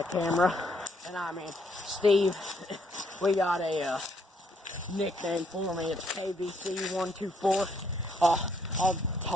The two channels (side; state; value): both; normal; correlation 0.71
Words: camera. And I mean, Steve, we got a nickname for me. It's KBC124. I'll